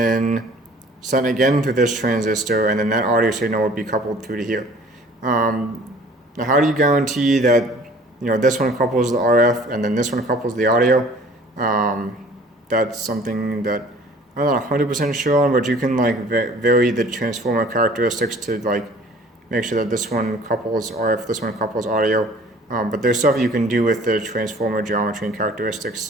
sent again through this transistor, and then that audio signal would be coupled through to here. Now, how do you guarantee that this one couples the RF and then this one couples the audio? That's something that I'm not 100% sure on, but you can vary the transformer characteristics to make sure that this one couples RF, this one couples audio. But there's stuff you can do with the transformer geometry and characteristics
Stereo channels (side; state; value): both; normal; correlation 0.51